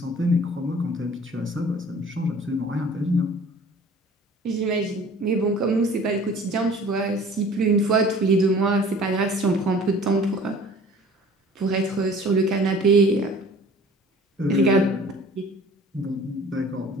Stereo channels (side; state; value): both; normal; correlation 0.48